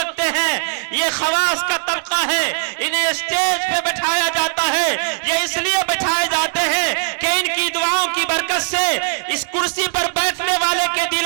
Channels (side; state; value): left; silent; 67 dB below the other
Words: हैं। ये खवास का तबका है, इन्हें स्टेज पे बैठाया जाता है। ये इसलिए बैठाए जाते हैं कि इनकी दुआओं की बरकत से इस कुर्सी पर बैठने वाले के